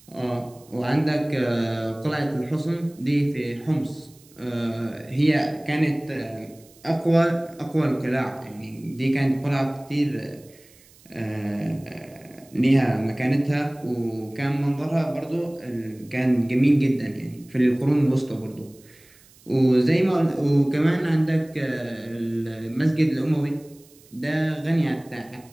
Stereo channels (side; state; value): right; noise; hiss, 27 dB below the sound